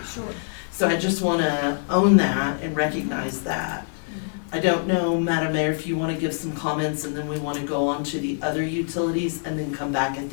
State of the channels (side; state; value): right; silent; digital silence